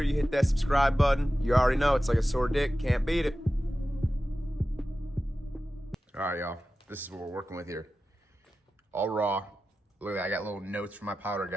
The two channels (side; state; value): both; normal; correlation 0.94